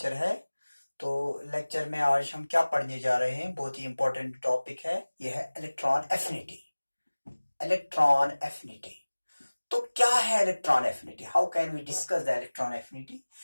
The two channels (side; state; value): both; inverted; correlation -1.00